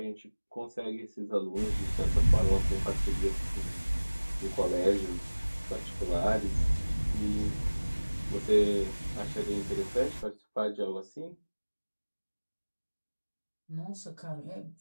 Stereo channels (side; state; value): both; inverted; correlation -1.00